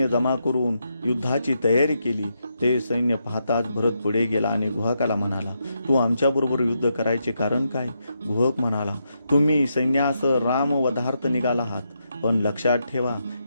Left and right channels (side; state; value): both; inverted; correlation -0.82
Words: जमा करून युद्धाची तयारी केली. ते सैन्य पाहताच भरत पुढे गेला आणि गुहकाला म्हणाला, तू आमच्याबरोबर युद्ध करायचे कारण काय? गुहक म्हणाला, तुम्ही सैन्यासह राम वधार्थ निघाला आहात, पण लक्षात ठेवा,